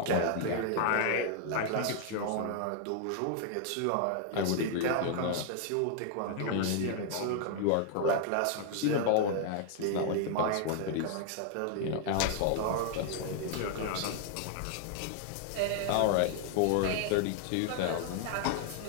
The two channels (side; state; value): both; different; correlation 0.00